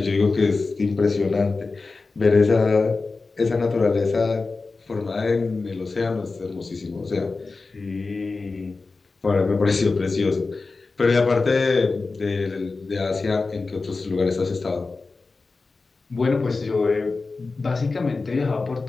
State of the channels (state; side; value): quieter; right; 3.9 dB